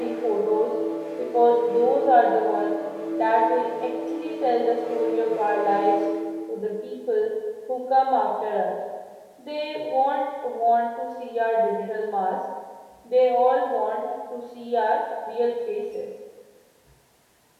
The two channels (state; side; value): identical; both; correlation 1.00